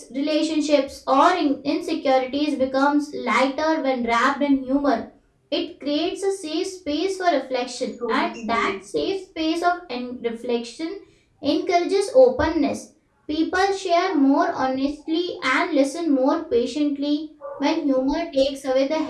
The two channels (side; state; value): both; identical; correlation 1.00